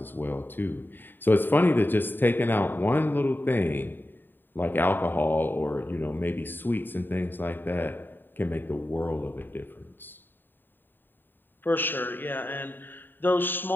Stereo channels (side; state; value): right; late; 0.094 ms